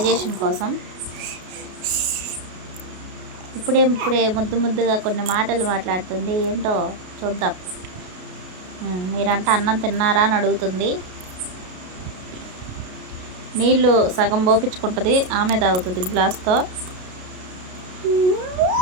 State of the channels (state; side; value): late; left; 33 ms